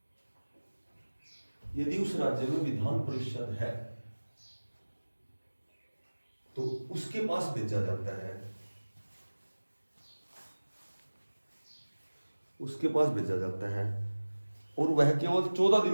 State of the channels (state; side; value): inverted; both; correlation -1.00